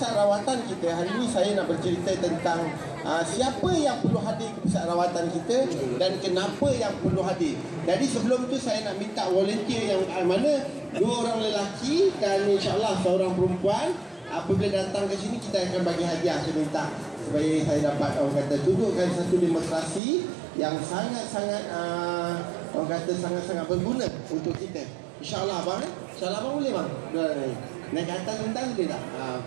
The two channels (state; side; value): drops out; left; at 20.0 s